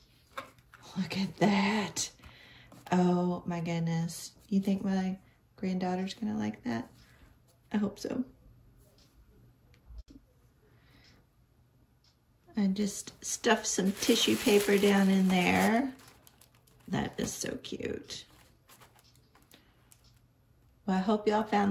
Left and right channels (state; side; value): identical; both; correlation 1.00